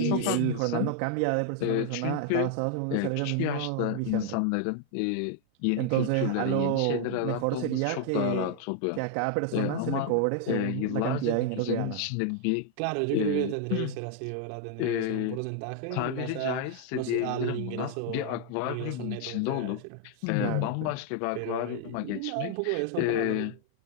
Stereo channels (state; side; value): different; both; correlation 0.00